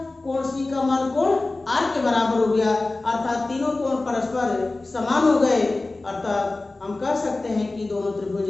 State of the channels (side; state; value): right; quieter; 3.2 dB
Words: कोण सी का मान कोण आर के बराबर हो गया, अर्थात तीनों कोण परस्पर समान हो गए, अर्थात हम कह सकते हैं कि दोनों त्रिभुज